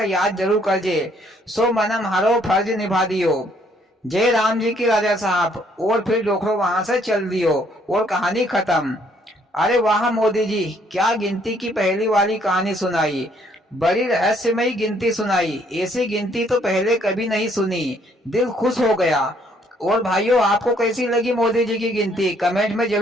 याद जरूर कर जे। सो मैंने हमारो फर्ज निभा दियो। जय राम जी की राजा साहब। और फिर डोखरो वहां से चल दियो और कहानी खत्म। अरे वाह मोदी जी, क्या गिनती की पहली वाली कहानी सुनाई, बड़ी रहस्यमयी गिनती सुनाई। ऐसी गिनती तो पहले कभी नहीं सुनी, दिल खुश हो गया। और भाइयों, आपको कैसी लगी मोदी जी की गिनती कमेंट में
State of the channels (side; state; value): both; normal; correlation 0.66